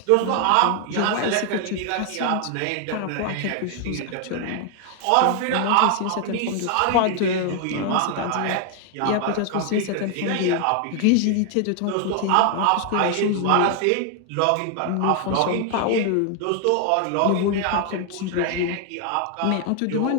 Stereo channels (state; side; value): different; both; correlation 0.00